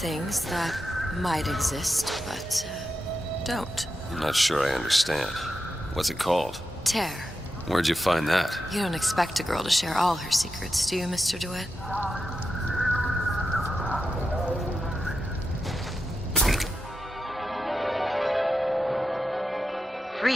that might exist, but don't. I'm not sure I understand. What's it called? Tear. Where'd you find that? You don't expect a girl to share all her secrets, do you, Mr. DeWitt?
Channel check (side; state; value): both; normal; correlation 0.89